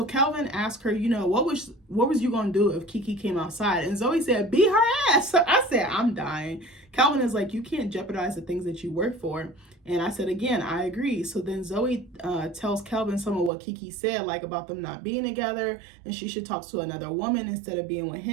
Calvin asked her, you know, what was you going to do if Kiki came outside? And Zoe said, beat her ass. I said, I'm dying. Calvin is like, you can't jeopardize the things that you work for. And I said, again, I agree. So then Zoe tells Calvin some of what Kiki said, like about them not being together and she should talk to another woman instead of being with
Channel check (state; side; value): drops out; left; at 13.5 s